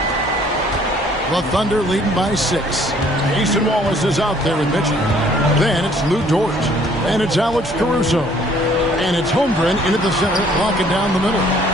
The Thunder leading by 6. Mason Wallace is out there with Mitchell. Then it's Lou Dort. And it's Alex Caruso. And it's Holmgren into the center, locking down the middle.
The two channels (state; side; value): normal; both; correlation 0.59